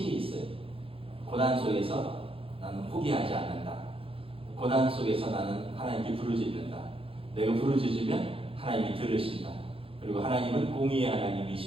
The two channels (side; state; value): left; late; 0.27 ms